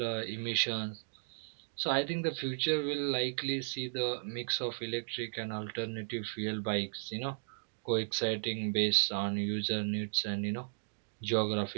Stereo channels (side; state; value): left; silent; digital silence